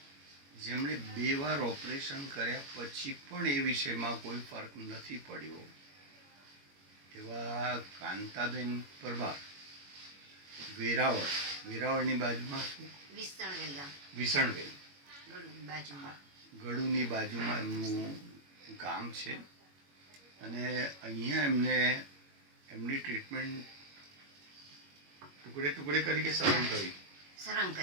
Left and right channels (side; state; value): left; late; 21 ms